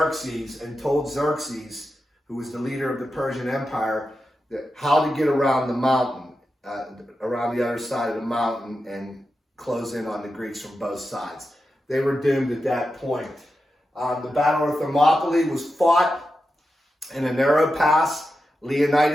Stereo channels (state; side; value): normal; both; correlation 0.90